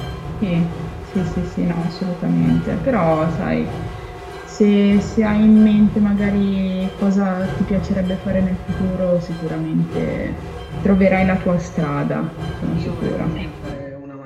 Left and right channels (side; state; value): both; identical; correlation 1.00